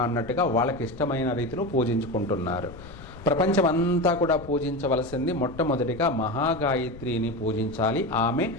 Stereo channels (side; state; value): left; noise; rumble, 17 dB below the sound